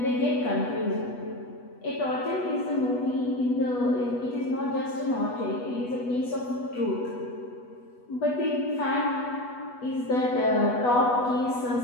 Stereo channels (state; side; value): late; right; 8.2 ms